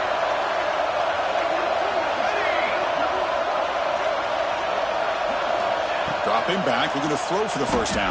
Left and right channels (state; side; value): identical; both; correlation 1.00